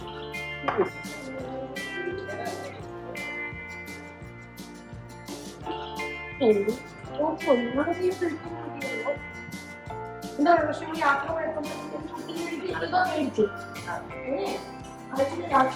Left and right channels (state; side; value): identical; both; correlation 1.00